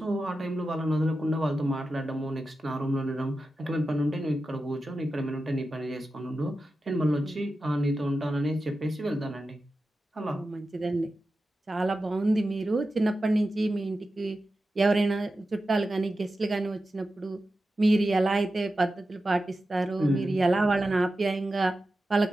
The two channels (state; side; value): normal; both; correlation 0.92